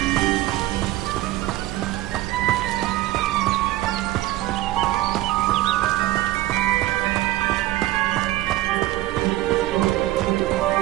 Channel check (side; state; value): left; quieter; 16.6 dB